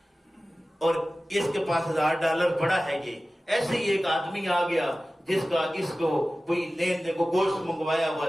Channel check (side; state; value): both; normal; correlation 0.96